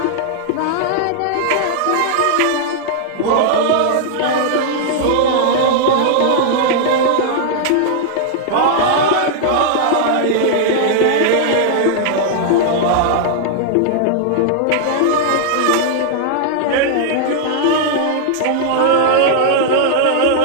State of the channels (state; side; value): different; both; correlation -0.01